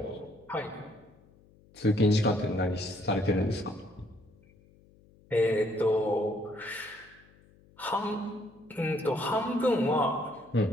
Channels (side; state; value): left; noise; hum, 28 dB below the sound